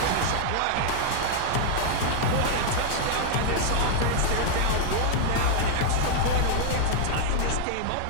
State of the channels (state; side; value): different; both; correlation -0.01